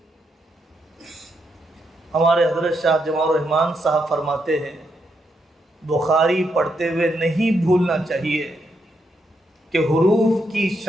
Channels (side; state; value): both; normal; correlation 0.80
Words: ہمارے حضرت شاہ جمال الرحمن صاحب فرماتے ہیں بخاری پڑھتے ہوئے نہیں بھولنا چاہیے کہ حروف کی